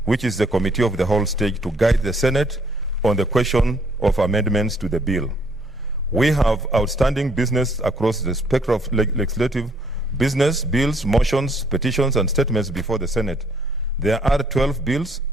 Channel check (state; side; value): normal; both; correlation 0.65